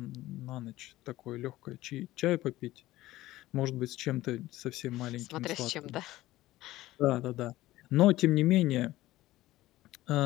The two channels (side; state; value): right; quieter; 16.5 dB